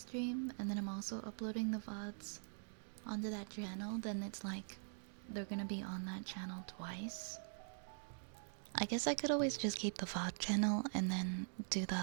and then I'm also uploading the VODs onto that channel, then it's like they're gonna be on that channel twice. I guess I could always just keep the VOD channel and then do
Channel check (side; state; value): left; silent; digital silence